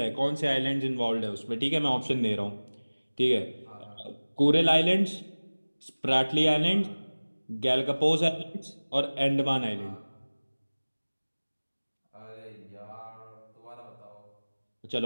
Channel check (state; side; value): inverted; both; correlation -1.00